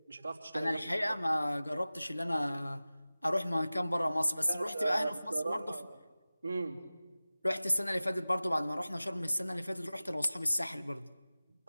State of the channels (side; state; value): both; inverted; correlation -0.97